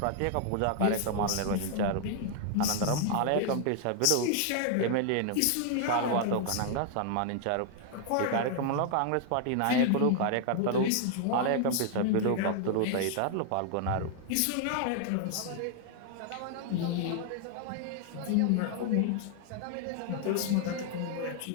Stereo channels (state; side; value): different; both; correlation 0.00